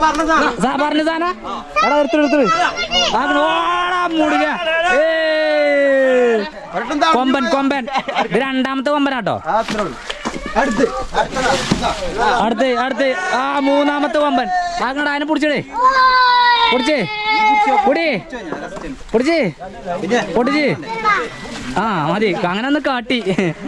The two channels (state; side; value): identical; both; correlation 1.00